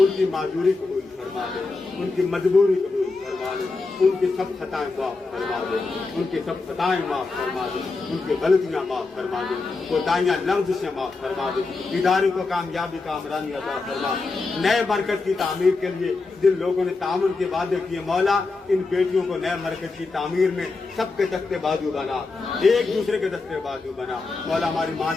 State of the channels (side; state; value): right; quieter; 3.8 dB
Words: ان کی معذوری قبول فرما دے، ان کی مجبوری قبول فرما دے، ان کی سب خطائیں معاف فرما دے، ان کی سب خطائیں معاف فرما دے، ان کی غلطیاں معاف فرما دے، کوتاہیاں لفظ سے معاف فرما دے۔ ادارے کو کامیابی کا کامرانی عطا فرما۔ نئے مرکز کی تعمیر کے لیے جن لوگوں نے تعاون کے وعدے کیے مولا، ان بیٹیوں کو نئے مرکز کی تعمیر میں سب کے دستے بازو بنا، ایک دوسرے کے دستے بازو بنا مولا۔ ہماری ماں